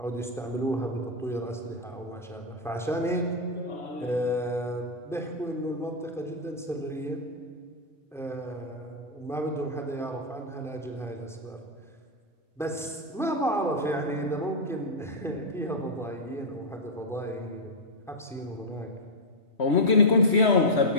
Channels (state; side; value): normal; both; correlation -0.04